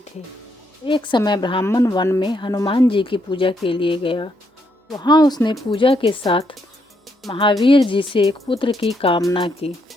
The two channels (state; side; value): normal; both; correlation 0.76